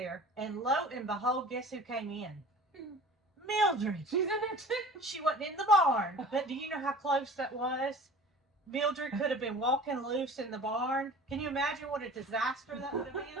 and lo and behold, guess who came in? Mildred. She's in there too. She wasn't in the barn, but do you know how close that was? Mildred could have been walking loose in the barn. Can you imagine what a disaster that would have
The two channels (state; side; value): normal; both; correlation 0.42